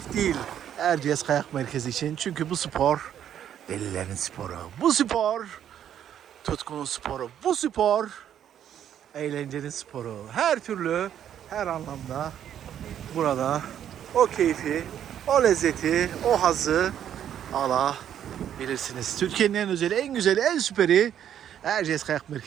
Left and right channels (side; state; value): left; quieter; 10.0 dB